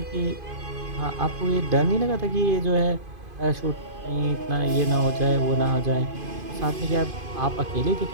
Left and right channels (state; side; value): late; left; 2.5 ms